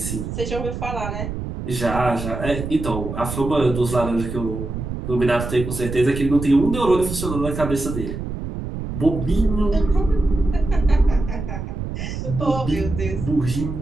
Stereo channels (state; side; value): noise; right; rumble, 6 dB below the sound